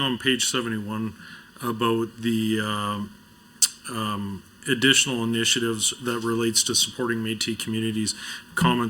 page 71 about the additional initiatives that relates to supporting Métis communities,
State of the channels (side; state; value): both; identical; correlation 1.00